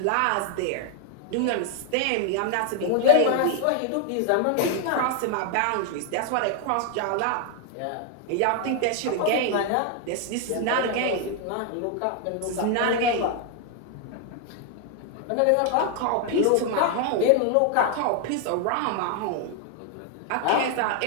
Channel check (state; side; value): different; both; correlation 0.00